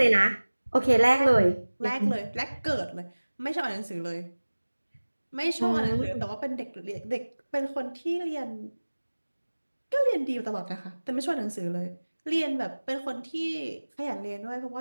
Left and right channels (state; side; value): inverted; both; correlation -1.00